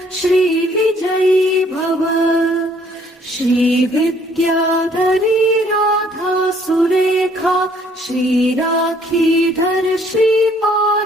श्री विजयी भव श्री विद्याधरी राधा सुरेखा श्री राखीधर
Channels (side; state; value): both; normal; correlation 0.62